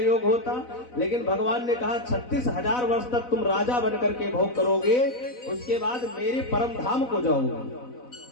होता, लेकिन भगवान ने कहा 36,000 वर्ष तक तुम राजा बन करके भोग करोगे, उसके बाद मेरे परम धाम को जाओगे।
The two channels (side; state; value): right; late; 4.0 ms